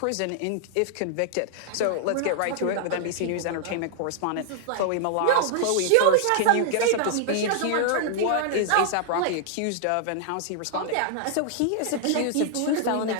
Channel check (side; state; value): both; different; correlation -0.01